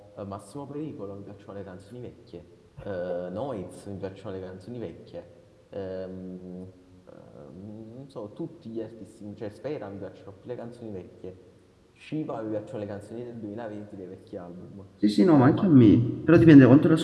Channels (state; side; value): identical; both; correlation 1.00